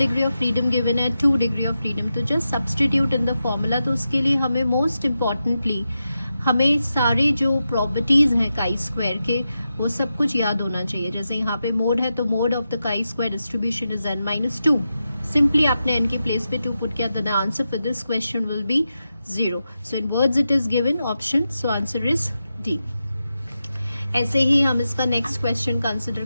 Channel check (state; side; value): inverted; both; correlation -0.90